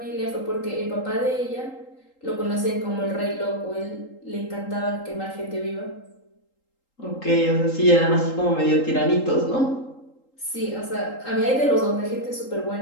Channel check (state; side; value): late; right; 3.8 ms